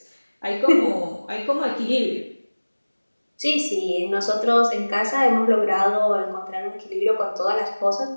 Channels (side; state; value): both; inverted; correlation -1.00